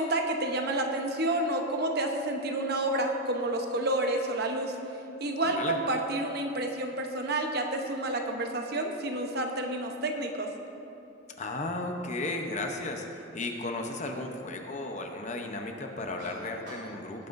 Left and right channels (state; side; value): normal; both; correlation 0.02